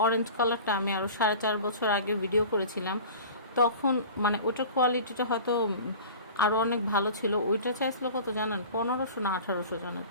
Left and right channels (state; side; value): inverted; both; correlation -0.39